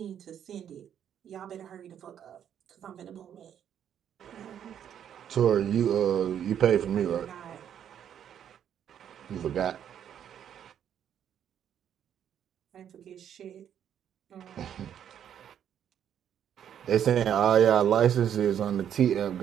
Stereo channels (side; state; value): left; quieter; 9.4 dB